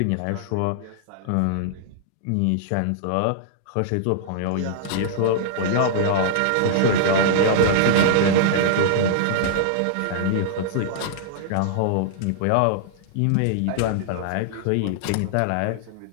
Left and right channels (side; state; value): both; different; correlation -0.01